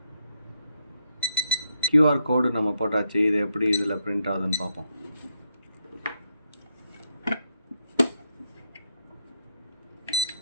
கியூஆர் கோடு நம்ம போட்டாச்சு. இது எப்படி இதில் பிரிண்ட் ஆகுதுன்னு பார்ப்போம்.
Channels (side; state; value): both; inverted; correlation -0.79